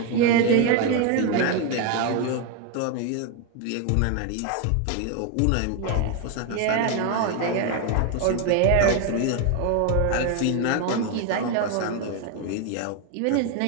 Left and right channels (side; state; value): both; different; correlation 0.02